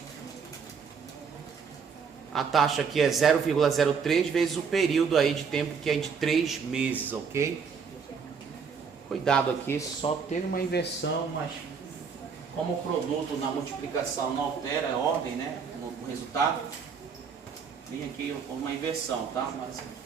A taxa aqui é 0,03 vezes o período aí de tempo, que é de 3 meses, ok? Cuidado aqui, só teve uma inversão, mas como o produto na multiplicação não altera a ordem, né? O resultado, tem aqui uma inversão, tá? Mas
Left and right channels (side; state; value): left; quieter; 6.0 dB